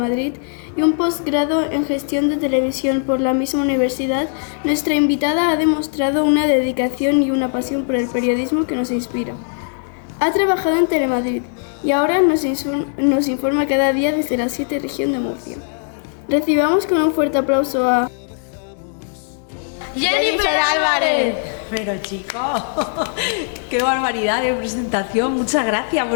y un posgrado en Gestión de Televisión por la misma universidad, nuestra invitada ha demostrado una dedicación y una pasión por el periodismo que nos inspira. Ha trabajado en Telemadrid y ahora nos informa cada día desde la 7 región de Murcia. Recibamos con un fuerte aplauso a Jennifer Álvarez. Pero chicos, qué barbaridad de presentación, muchas gracias,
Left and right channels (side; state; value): right; silent; digital silence